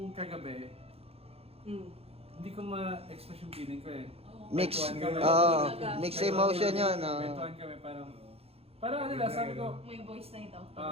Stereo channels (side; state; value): left; late; 0.29 ms